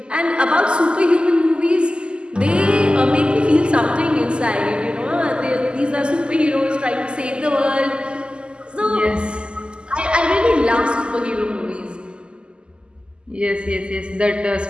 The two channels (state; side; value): late; left; 0.050 ms